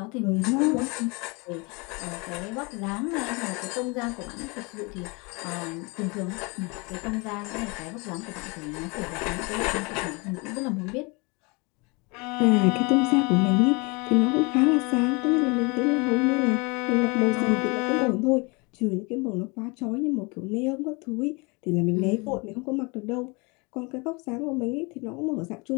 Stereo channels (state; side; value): quieter; right; 28.6 dB